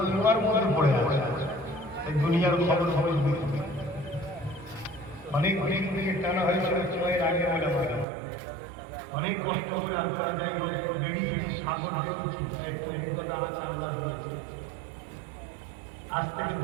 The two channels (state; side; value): drops out; left; at 8.1 s